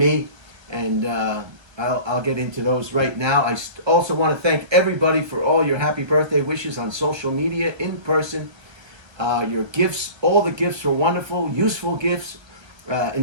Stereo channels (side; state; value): left; late; 1.3 ms